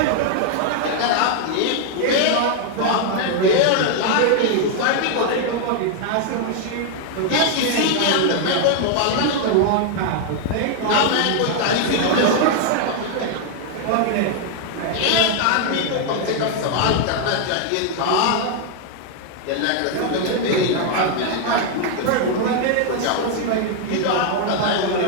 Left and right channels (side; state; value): both; different; correlation 0.00